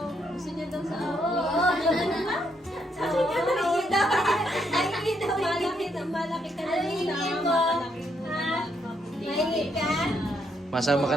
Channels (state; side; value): normal; both; correlation 0.75